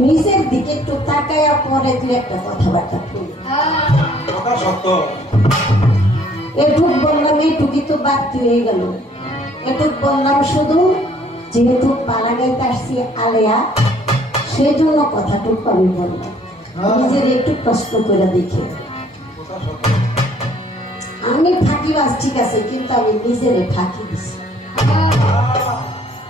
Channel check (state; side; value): normal; both; correlation 0.60